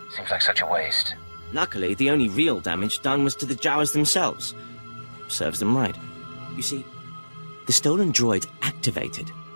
Seems like such a waste. Luckily, the only real damage done was to the Jawas themselves. Serves them right. You see, the stolen droids activated.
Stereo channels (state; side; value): inverted; both; correlation -1.00